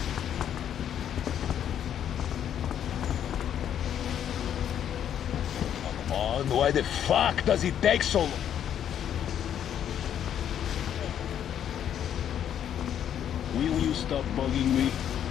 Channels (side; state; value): right; quieter; 9.7 dB